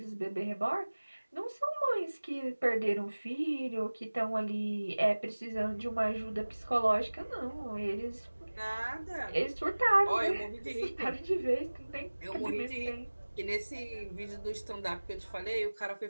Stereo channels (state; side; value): inverted; both; correlation -1.00